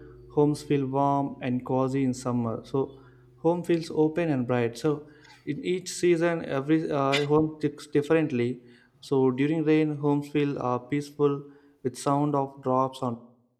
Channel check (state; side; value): identical; both; correlation 1.00